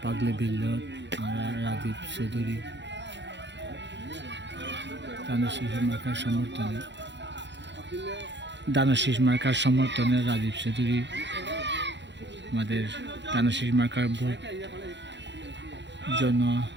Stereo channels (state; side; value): late; left; 0.52 ms